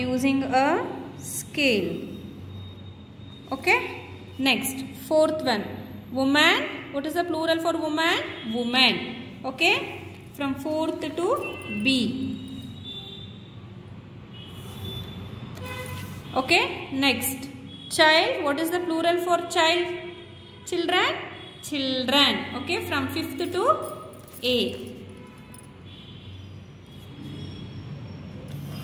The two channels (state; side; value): identical; both; correlation 1.00